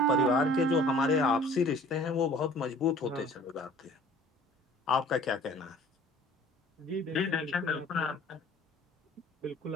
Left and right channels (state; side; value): normal; both; correlation 0.51